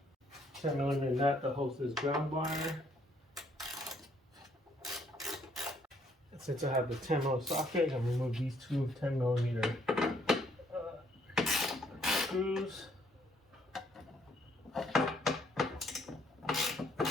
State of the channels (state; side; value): normal; both; correlation 0.67